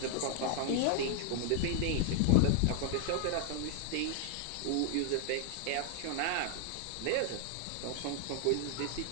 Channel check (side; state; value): both; different; correlation 0.00